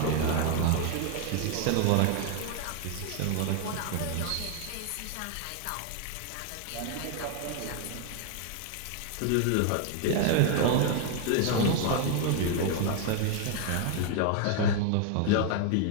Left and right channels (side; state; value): both; different; correlation 0.00